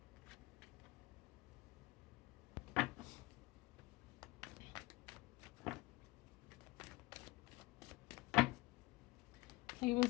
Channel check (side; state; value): right; quieter; 20.8 dB